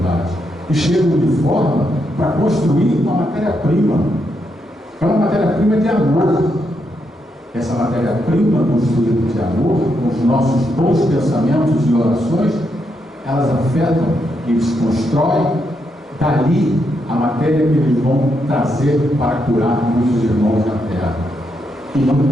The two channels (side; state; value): both; normal; correlation 0.80